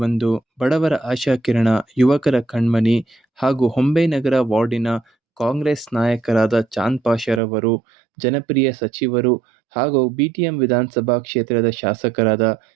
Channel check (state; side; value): drops out; left; at 7.4 s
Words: ಬಡವರ ಆಶಾಕಿರಣ, ಯುವಕರ ಕಣ್ಮನಿ ಹಾಗೂ ಹೊಂಬೆನಗರ ವಾರ್ಡಿನ ಕಾಂಗ್ರೆಸ್ ನಾಯಕರಾದ ಚಾಂದ್ ಪಾಷರವರು, ಜನಪ್ರಿಯ ಸಚಿವರು ಹಾಗೂ ಬಿಟಿಎಂ ವಿಧಾನಸಭಾ ಕ್ಷೇತ್ರದ ಶಾಸಕರಾದ